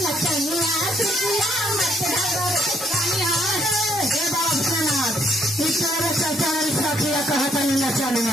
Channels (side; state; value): both; normal; correlation 0.69